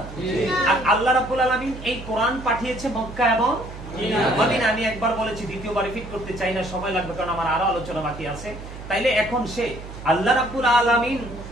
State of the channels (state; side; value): noise; right; hum, 12 dB below the sound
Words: আর আল্লাহ রাব্বুল আলামিন এই কোরআন পাঠিয়েছে মক্কা এবং মদিনা। আমি একবার বলেছি, দ্বিতীয়বার রিপিট করতে চাই না, সময় লাগবে, কারণ আমার আরো আলোচনা বাকি আছে। তাইলে এখন সে আল্লাহ রাব্বুল